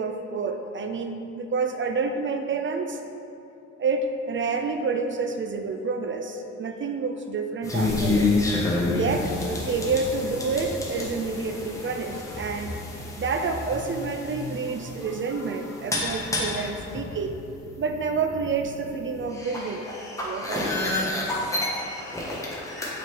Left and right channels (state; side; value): normal; both; correlation 0.18